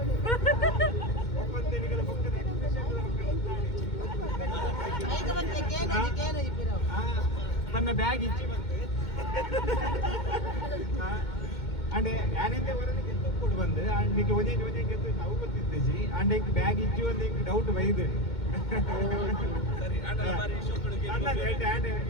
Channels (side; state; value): right; late; 2.1 ms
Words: ಒಪ್ಪಂತನಿಗಳ ಪಕ್ಕದ ನನ್ನ ಬ್ಯಾಗ್ ಇಚ್ಚಿ ಬಂತು ಅಂಡ್ ಯಾನೆಂದೆ ಹೊರಗೆ ಗೆದ್ದು ಕೊಟ್ಟು ಬಂದು ಅಂಡ್ ಈಗ ಒಂದೇ ಗೆದ್ದು ನಾವು ಗೊತ್ತಿದ್ದೇಜಿ ಅಂಡ್ ಈಗ ಬ್ಯಾಗ್ ಇಚ್ಚಿ ಒಂದು ಈಗ ಡೌಟ್ ಬೈದು ಸರಿ